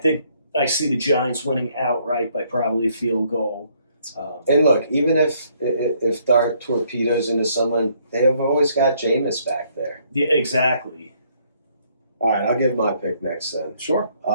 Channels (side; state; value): both; inverted; correlation -0.68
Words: I see the Giants winning outright by probably a field goal. And look, even if Dart torpedoes into someone, they have always got Jameis back there. Yeah, exactly. All right, I'll give my pick next then. Sure.